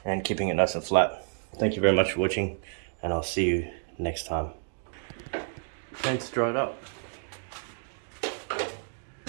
and keeping it nice and flat. Thank you very much for watching, and I'll see you next time. Paint's dried up.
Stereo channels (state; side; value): silent; left; digital silence